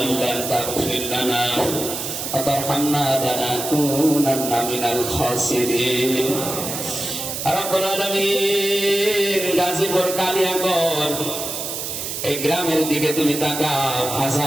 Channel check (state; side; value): noise; right; hiss, 5 dB below the sound